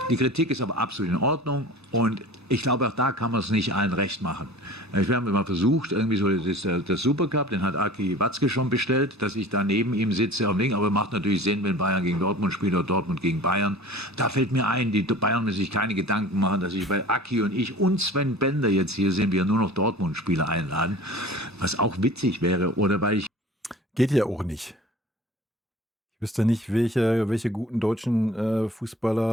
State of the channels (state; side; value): normal; both; correlation 0.42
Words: Die Kritik ist aber absolut in Ordnung und ich glaube, auch da kann man es nicht allen recht machen. Wir haben immer versucht, irgendwie so, das ist der Supercup, den hat Aki Watzke schon bestellt, dass ich da neben ihm sitze am Ding, aber macht natürlich Sinn, wenn Bayern gegen Dortmund spielt oder Dortmund gegen Bayern. Da fällt mir ein, die Bayern müssen sich keine Gedanken machen, dass ich bei Aki und ich und Sven Bender jetzt hier sind, wir nur noch Dortmund-Spieler einladen, was auch witzig wäre, oder weil ich... Geht ja auch nicht. Ich wüsste nicht, welche guten deutschen